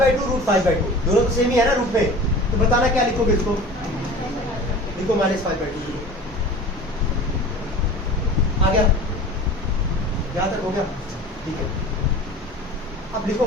√5/2 दोनों तो सेम ही है ना रूट में, तो बताना क्या लिखोगे इसको? लिखो -5/2। आ गया? यहाँ तक हो गया? ठीक है, अब लिखो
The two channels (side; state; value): both; normal; correlation 0.39